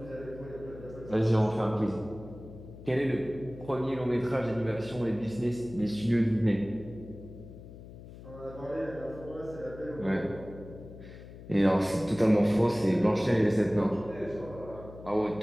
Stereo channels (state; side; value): noise; left; hum, 15 dB below the sound